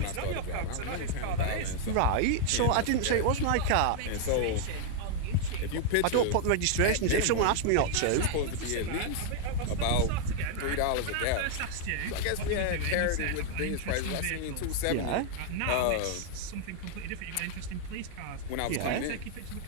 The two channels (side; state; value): both; different; correlation 0.00